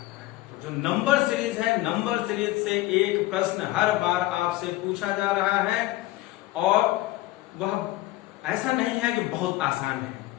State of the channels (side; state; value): right; quieter; 17.2 dB